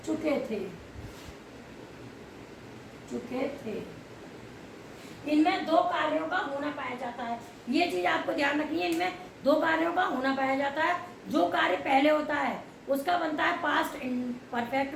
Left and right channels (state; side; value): identical; both; correlation 1.00